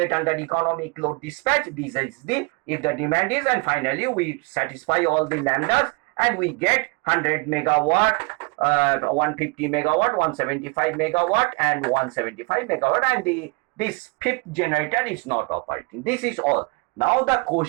under economic load dispatch. This is the, if the demand is, and finally we satisfy all the lambdas and we get 100 megawatt, 150 megawatt, 175 megawatt and 175 megawatt, and this fifth generator is not operating. This is all. Now the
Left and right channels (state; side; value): quieter; left; 28.8 dB